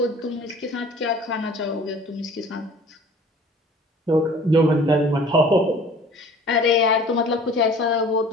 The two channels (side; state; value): both; normal; correlation 0.48